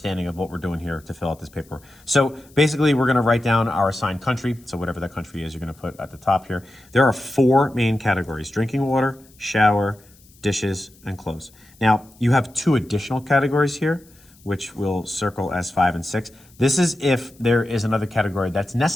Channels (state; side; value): noise; left; hiss, 28 dB below the sound